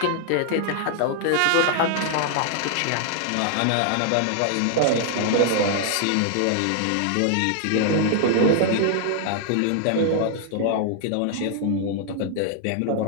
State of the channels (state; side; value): different; both; correlation 0.00